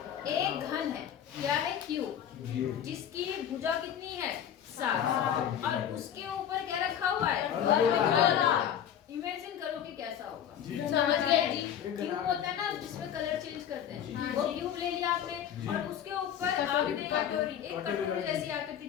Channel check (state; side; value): quieter; right; 9.5 dB